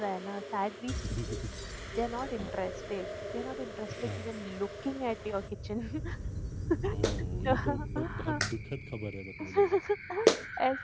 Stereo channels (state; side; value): identical; both; correlation 1.00